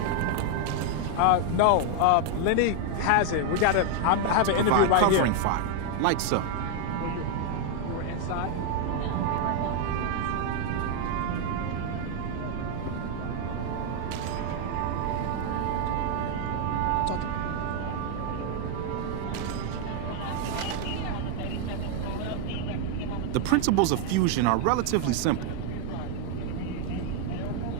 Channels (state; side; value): different; both; correlation 0.00